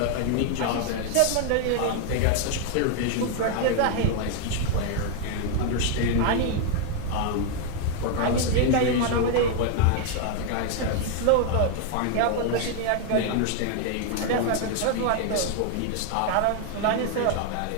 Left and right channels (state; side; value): different; both; correlation 0.01